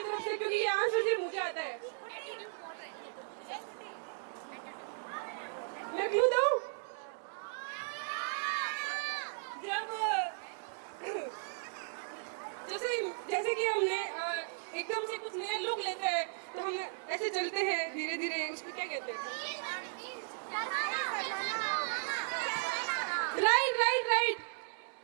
तरफ से क्योंकि ये आंसर सिर्फ मुझे आता है मैं क्लू दूं जैसे कि हमने एकदम से कुछ नया लुक लेते हैं तो हम ऐसे चलते हैं धीरे धीरे उसको क्या कहते हैं राइट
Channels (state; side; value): silent; left; digital silence